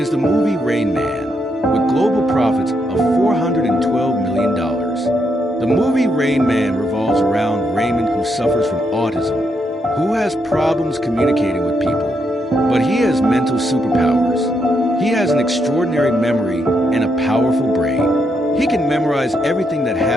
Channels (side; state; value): both; normal; correlation 0.79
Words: the movie Rain Man, with global profits of $412 million. The movie Rain Man revolves around Raymond, who suffers from autism, who has problems communicating with people, but he has mental superpowers. He has an extraordinary memory and a powerful brain. He can memorize everything that